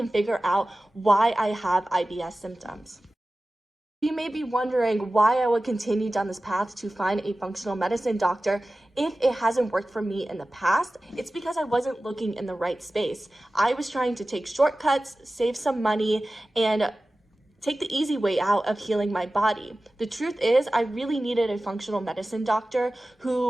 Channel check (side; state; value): both; normal; correlation 0.96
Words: figure out why I have IBS symptoms. You may be wondering why I would continue down this path to find a functional medicine doctor if it hasn't worked for me in the past. It's because I wasn't looking in the right space. I was trying to take shortcuts, save some money, and take the easy way out of healing my body. The truth is, I really needed a functional medicine doctor